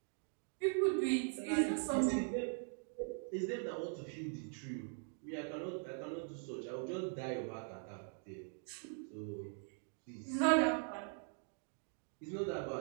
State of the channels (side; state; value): left; silent; 50 dB below the other